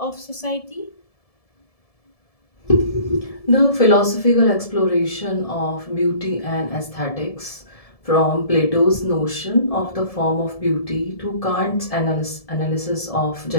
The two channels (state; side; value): late; right; 1.7 ms